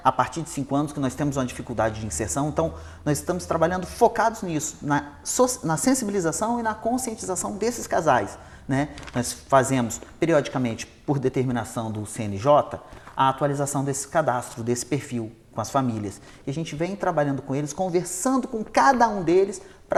a partir de 5 anos, que nós temos uma dificuldade de inserção. Então, nós estamos trabalhando focados nisso, na sensibilização e na conscientização desses casais, né? Nós fazemos, periodicamente, por determinação do CNJ, a atualização desse cadastro, desse perfil com as famílias. E a gente vem trabalhando com eles, conversando com cada um deles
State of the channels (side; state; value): both; identical; correlation 1.00